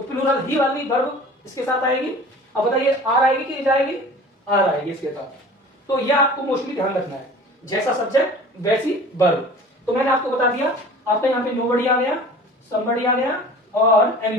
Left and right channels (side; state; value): both; normal; correlation 0.42